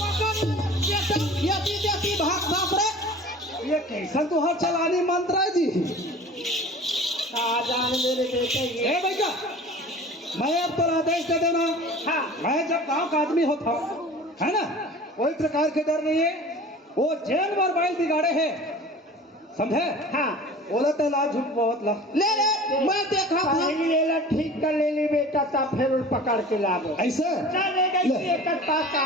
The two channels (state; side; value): normal; both; correlation 0.41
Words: यति भाग भाग रे। ये कैसा तो हर चलानी मंत्र है जी जान मेरे बेटे ये ए भैया मैं अब तो आदेश दे देना हाँ मैं जब गांव का आदमी होता है ना कोई प्रकार के डर नहीं है वो जेल में बाइल बिगाड़े है समझे हाँ बोला तो ला झूठ बहुत ला ले ले मैं देखा था पहली ले ला ठीक कर ले ली बेटा, तब फिर उन पकड़ के लाओ ऐसे चले गई एक पास